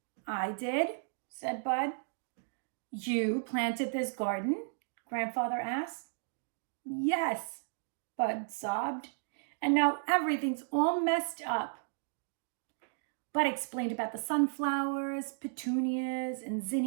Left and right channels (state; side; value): silent; left; digital silence